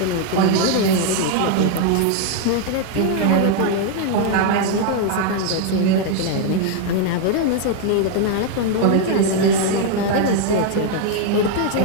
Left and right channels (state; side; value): different; both; correlation 0.00